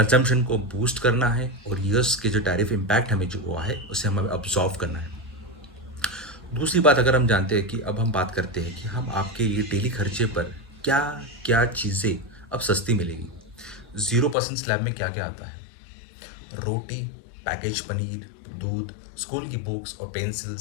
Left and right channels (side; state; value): right; drops out; at 14.4 s